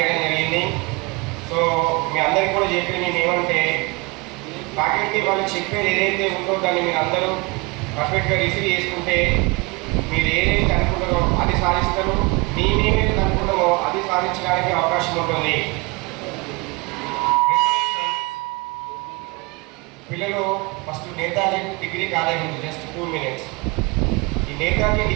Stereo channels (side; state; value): left; quieter; 27.2 dB